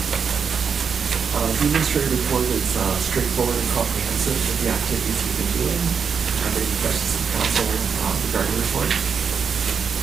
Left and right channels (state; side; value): quieter; left; 6.4 dB